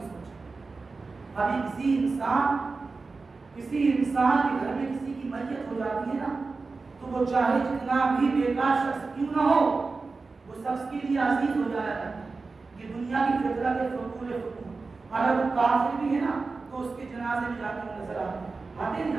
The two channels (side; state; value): left; quieter; 4.0 dB